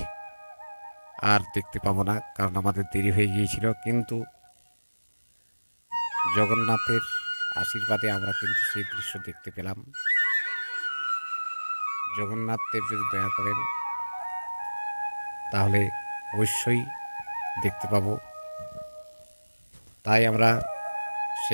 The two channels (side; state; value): both; inverted; correlation -1.00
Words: আর দেখতে পাবো না, কারণ আমাদের দেরি হয়ে গিয়েছিল। কিন্তু জগন্নাথের আশীর্বাদে আমরা কিন্তু সেই দৃশ্য দেখতে পেলাম। জগন্নাথ দেব যদি দয়া করেন তাহলে অবশ্যই দেখতে পাবো। তাই আমরা